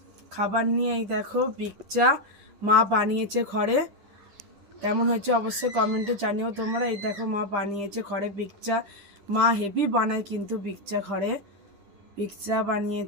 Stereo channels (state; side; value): late; left; 10 ms